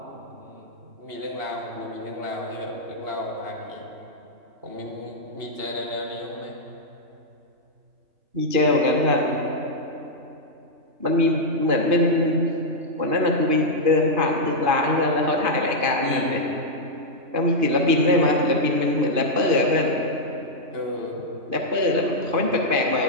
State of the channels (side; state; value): left; late; 2.5 ms